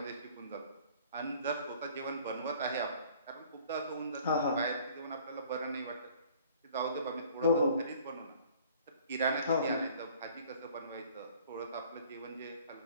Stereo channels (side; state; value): both; inverted; correlation -0.53